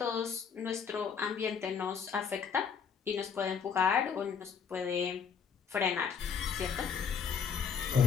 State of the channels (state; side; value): quieter; right; 6.7 dB